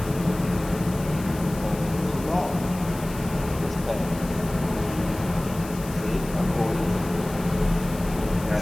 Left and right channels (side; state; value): left; noise; hiss, 16 dB below the sound